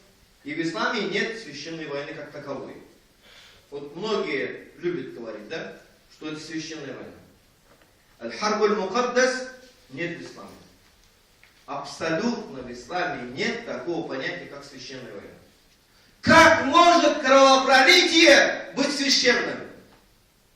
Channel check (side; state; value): both; identical; correlation 1.00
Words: и в исламе нет священной войны как таковой. Вот многие любят говорить, да, что это священная война. Аль-Харбуль Мукаддас нет в исламе. Абсолютно в исламе нет такого понятия, как священная война. Как может кровопролитие быть священным?